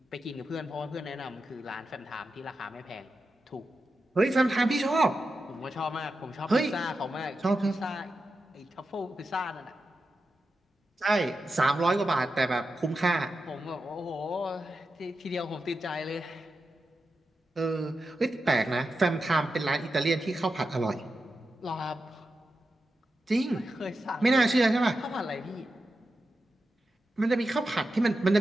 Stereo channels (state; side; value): normal; both; correlation 0.90